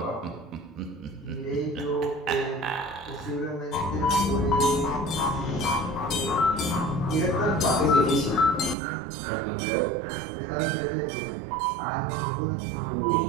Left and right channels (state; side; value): drops out; left; at 8.8 s